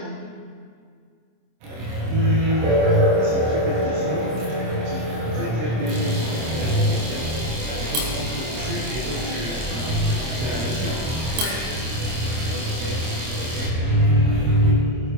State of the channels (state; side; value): late; left; 26 ms